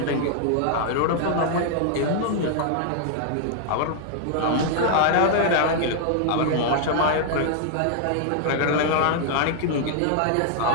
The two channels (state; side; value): different; both; correlation 0.00